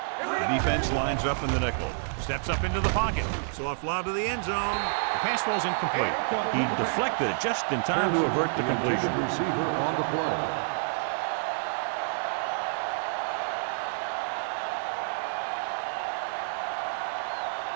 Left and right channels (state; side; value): silent; left; digital silence